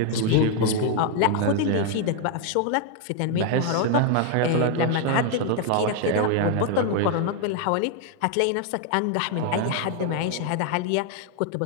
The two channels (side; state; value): both; different; correlation 0.00